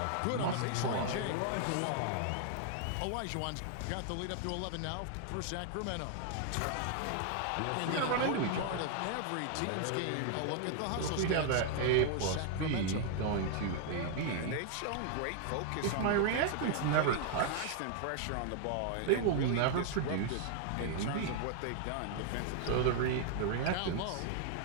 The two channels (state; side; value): different; both; correlation 0.00